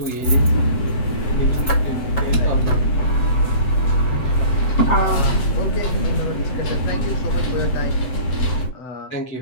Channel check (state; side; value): late; right; 7.9 ms